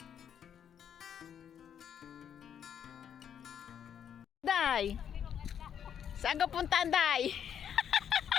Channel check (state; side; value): quieter; right; 8.7 dB